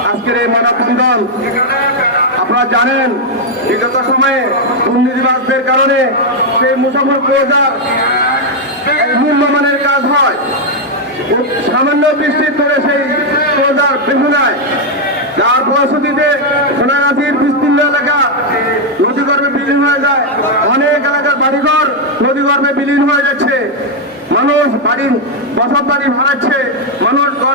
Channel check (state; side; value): normal; both; correlation 0.00